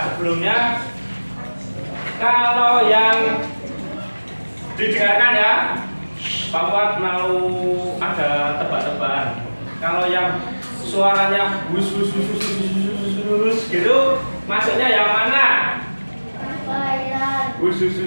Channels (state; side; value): inverted; both; correlation -1.00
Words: sebelumnya kalau yang didengarkan ya, Pak Fuad mau ada tebak-tebakan. suaranya bus gitu, masuknya yang mana? Bus